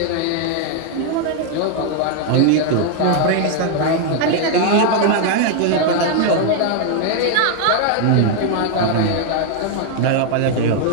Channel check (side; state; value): both; different; correlation 0.00